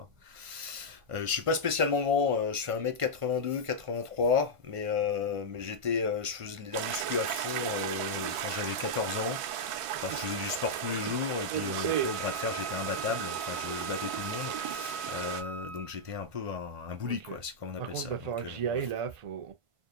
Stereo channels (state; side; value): late; left; 1.5 ms